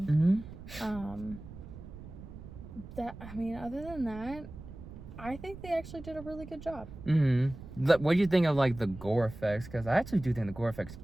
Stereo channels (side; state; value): right; noise; rumble, 14 dB below the sound